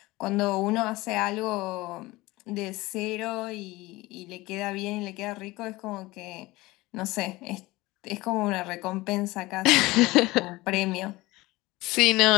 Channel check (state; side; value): quieter; right; 20.3 dB